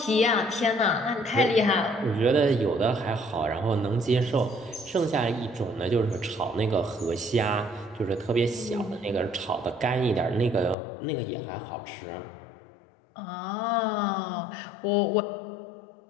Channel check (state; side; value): drops out; right; at 10.8 s